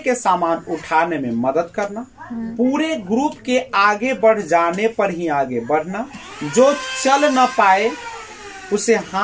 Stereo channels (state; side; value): identical; both; correlation 1.00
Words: सामान उठाने में मदद करना, पूरे ग्रुप के आगे बढ़ जाने पर ही आगे बढ़ना, जो चल न पाए उसे